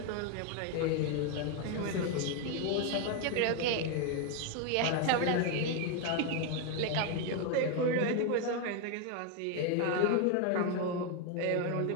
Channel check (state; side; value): different; both; correlation 0.01